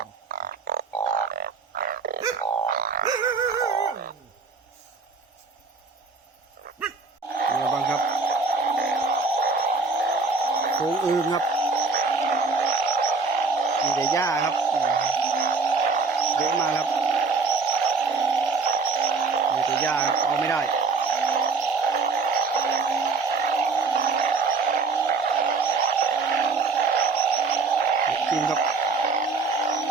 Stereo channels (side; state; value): left; quieter; 4.3 dB